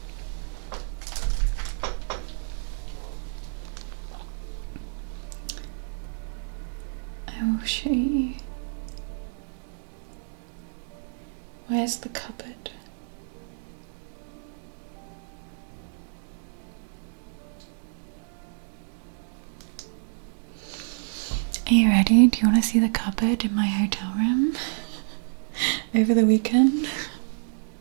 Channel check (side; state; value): left; silent; digital silence